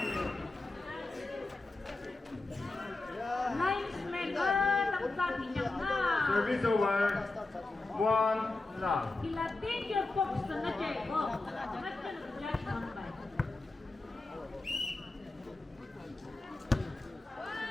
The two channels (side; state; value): right; quieter; 3.2 dB